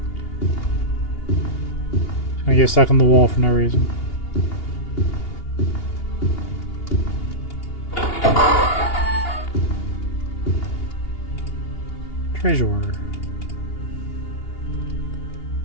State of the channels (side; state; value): right; late; 2.8 ms